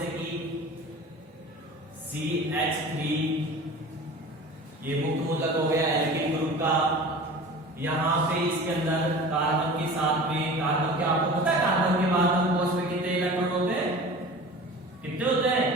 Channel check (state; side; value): normal; both; correlation 0.38